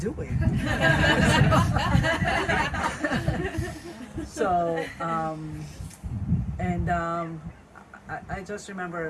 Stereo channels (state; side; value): identical; both; correlation 1.00